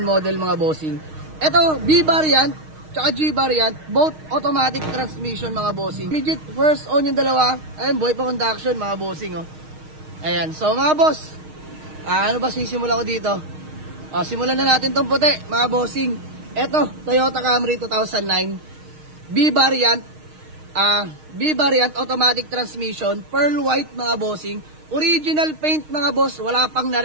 model mga bossing. Eto, B variant, tsaka G variant. Both automatic transmission mga bossing. Legit first own yung dalawa. Ayan, buhay pa conduction mga bossing oh. Ayan, so mga boss, ano ba sisimula ko dito? Simulan na natin tong puti, mga bossing. Eto, Toyota Camry 2009, B variant automatic transmission, pearl white mga bossing. Original paint mga boss, wala pang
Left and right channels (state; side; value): late; left; 6.4 ms